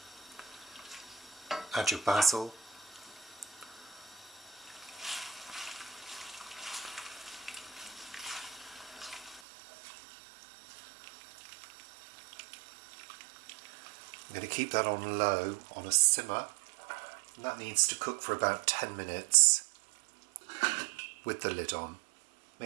Add your basil. I'm going to keep that on low, on a simmer, and that needs to cook for about 10 minutes with the lid on.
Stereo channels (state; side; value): drops out; left; at 9.4 s